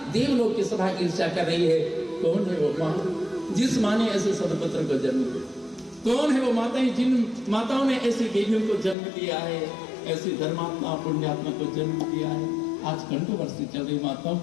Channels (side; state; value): right; drops out; at 9.0 s